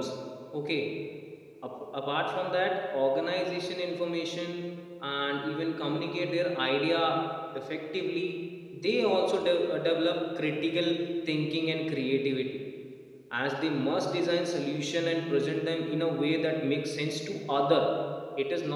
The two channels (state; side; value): identical; both; correlation 1.00